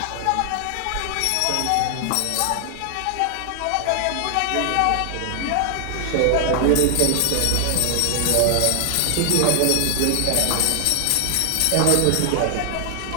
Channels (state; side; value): different; both; correlation 0.00